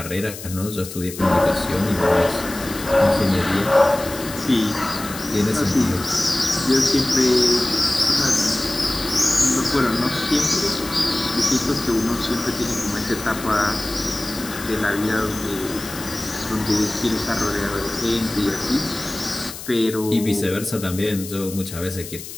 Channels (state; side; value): noise; left; hiss, 12 dB below the sound